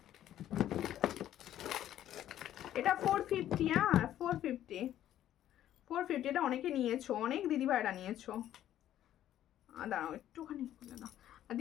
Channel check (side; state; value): right; quieter; 12.0 dB